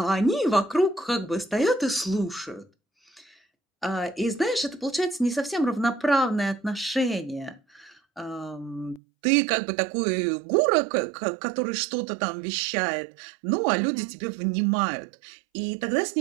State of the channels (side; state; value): left; drops out; at 9.0 s